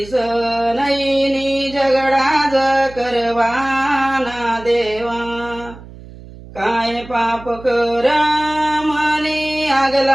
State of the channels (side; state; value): right; noise; hum, 17 dB below the sound